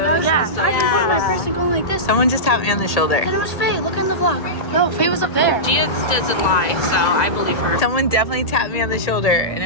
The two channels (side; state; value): right; late; 1.9 ms